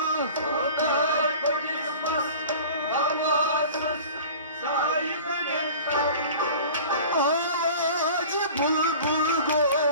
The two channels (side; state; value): both; inverted; correlation -0.41